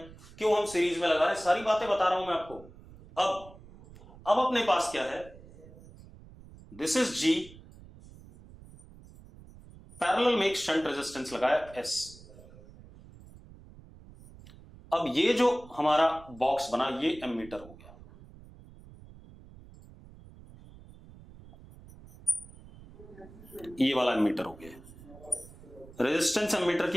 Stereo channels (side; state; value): right; noise; rumble, 20 dB below the sound